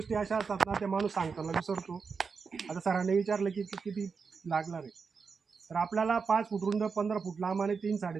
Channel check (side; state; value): left; quieter; 5.3 dB